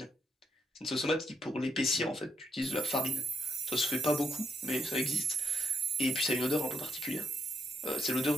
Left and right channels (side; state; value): both; normal; correlation 0.76